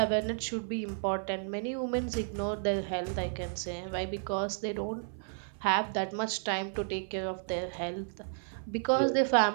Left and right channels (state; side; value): silent; left; 56 dB below the other